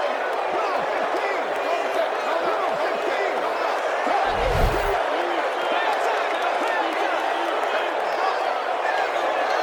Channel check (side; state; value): both; identical; correlation 1.00